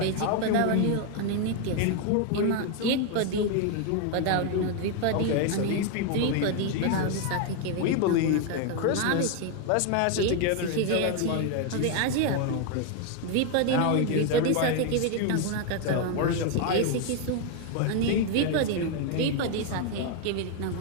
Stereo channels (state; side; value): different; both; correlation 0.01